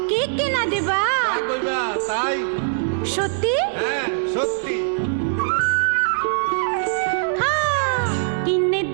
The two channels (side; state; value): left; silent; 65 dB below the other